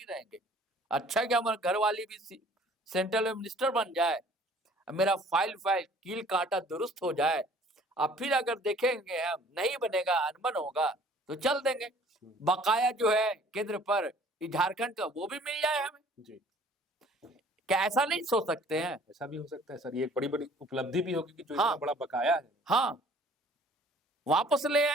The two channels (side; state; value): both; normal; correlation 0.54